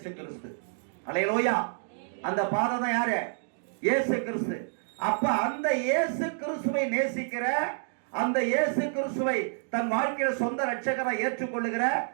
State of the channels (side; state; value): left; silent; digital silence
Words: கிறிஸ்து. அல்லேலூயா. அந்த பாதை தான் யாரு, இயேசு கிறிஸ்து. அப்ப அந்த இயேசு கிறிஸ்துவை நேசிக்கிற, அந்த இயேசு கிறிஸ்துவை தன் வாழ்க்கையில சொந்த ரட்சகரை ஏற்றுக்கொள்ளுகிற